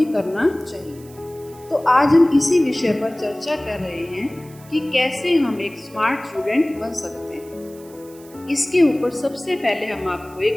करना चाहिए। तो आज हम इसी विषय पर चर्चा कर रहे हैं कि कैसे हम एक स्मार्ट स्टूडेंट बन सकते हैं। इसके ऊपर सबसे पहले हम आपको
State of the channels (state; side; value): noise; right; hiss, 23 dB below the sound